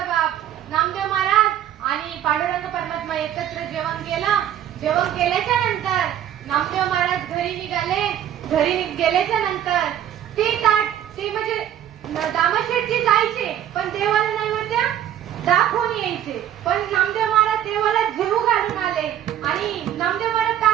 बाप नामदेव महाराज आणि पांडुरंग परमात्मा एकत्र जेवण केलं. जेवण केल्याच्या नंतर नामदेव महाराज घरी निघाले. घरी गेल्याच्या नंतर ते म्हणजे दामाशेठजी जायचे पण देवाला नैवेद्य दाखवून यायचे. पण नामदेव महाराज देवाला जेवू घालून आले आणि नामदेव महाराज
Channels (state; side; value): quieter; left; 10.9 dB